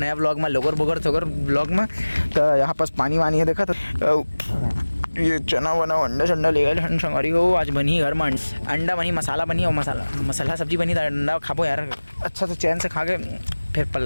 ब्लॉग में लोगर बोगर थोगर ब्लॉग में। तो यहाँ पास पानी वानी है देखा तो ये चना वना अंडा शंडा ले गए संगवारी हो। आज बनी घर में अंडा बनी, मसाला बनी और मसाला सब्जी बनी। तो अंडा खाबो यार अच्छा से चैन से खा के फिर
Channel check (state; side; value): inverted; both; correlation -1.00